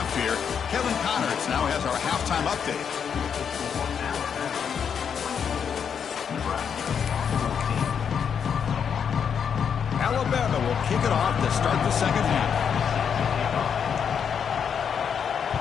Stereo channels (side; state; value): right; quieter; 7.3 dB